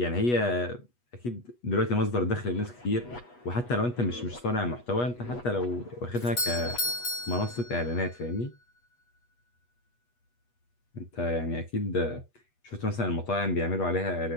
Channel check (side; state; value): right; late; 8.2 ms